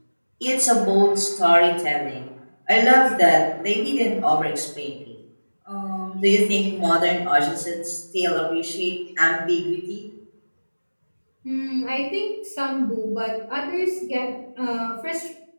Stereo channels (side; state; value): both; inverted; correlation -1.00